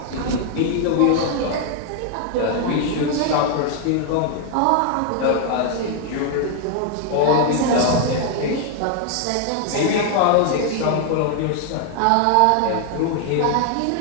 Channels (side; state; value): both; different; correlation 0.00